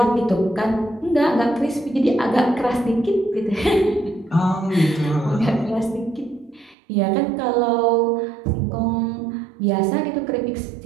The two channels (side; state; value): left; drops out; at 6.8 s